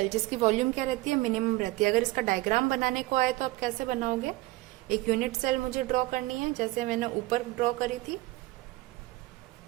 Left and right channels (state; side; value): quieter; left; 19.8 dB